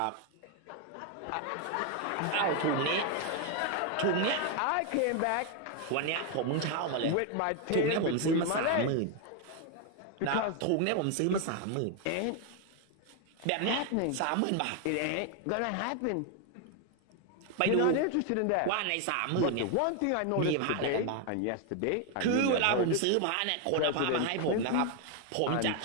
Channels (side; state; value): both; different; correlation 0.01